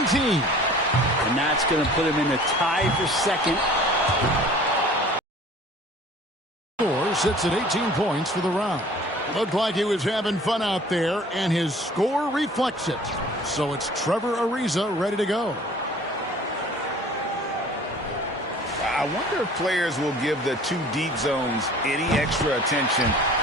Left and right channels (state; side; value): normal; both; correlation 0.48